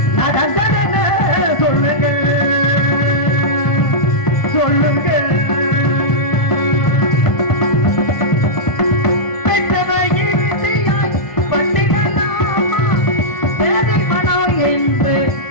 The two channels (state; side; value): late; right; 1.5 ms